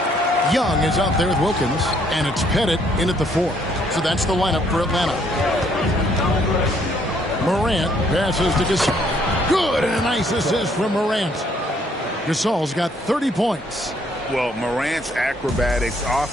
Young is out there with Wilkins, and it's Pettit in at the 4. So that's the lineup for Atlanta. Morant passes to Gasol. Good, and a nice assist from Morant. Gasol's got 30 points. Well, Morant's acrobatics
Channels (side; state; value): both; normal; correlation 0.66